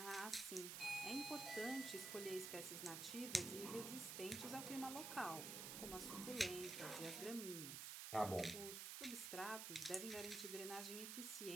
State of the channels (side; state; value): right; noise; hiss, 4 dB below the sound